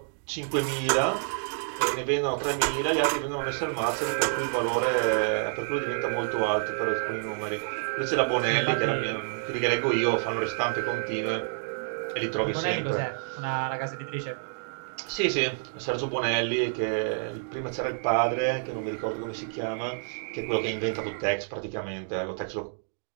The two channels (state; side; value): silent; left; digital silence